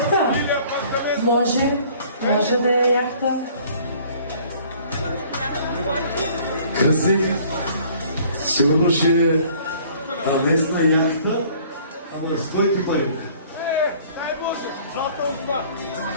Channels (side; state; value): both; inverted; correlation -0.54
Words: Може да е яхта. Кръстник, сигурно ще е местна яхта, ама с кой ти пари?